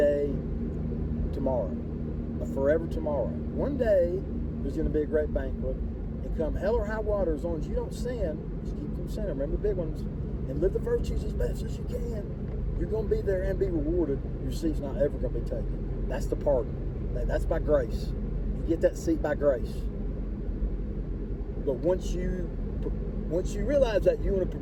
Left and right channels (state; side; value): identical; both; correlation 1.00